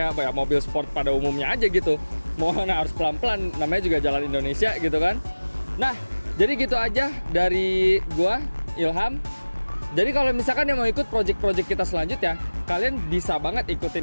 apa ya, mobil sport pada umumnya aja gitu. Mohon harus pelan-pelan, namanya juga jalan Indonesia gitu kan. Nah, jadi gitu aja dari gua, Ilham. Jadi kalau misalkan yang mau ikut project-project kita selanjutnya, kalian bisa banget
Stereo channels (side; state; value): both; inverted; correlation -1.00